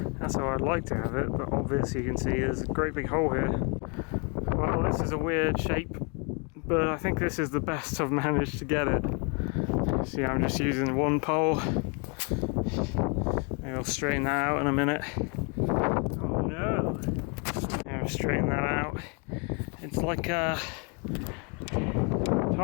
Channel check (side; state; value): right; quieter; 33.1 dB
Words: That's how I'd like to have it, but obviously you can see there's a great big hole here. Well, this is a weird shape, but I think this is the best I've managed to get it. See, I'm just using one pole. Maybe I'll straighten that out in a minute. Oh no! I'll straighten that out. It's like